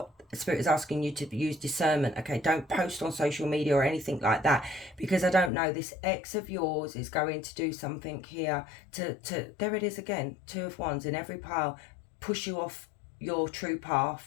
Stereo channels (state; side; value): drops out; right; at 5.5 s